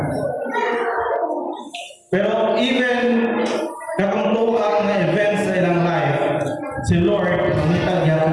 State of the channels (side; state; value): both; identical; correlation 1.00